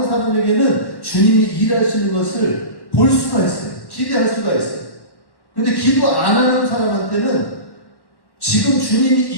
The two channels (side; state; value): right; late; 1.1 ms